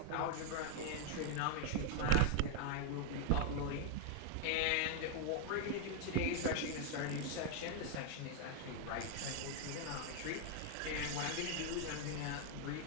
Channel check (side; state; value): both; different; correlation 0.00